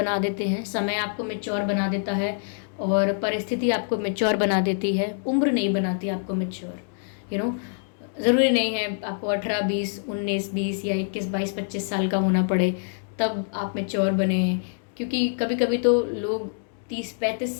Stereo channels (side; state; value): right; silent; digital silence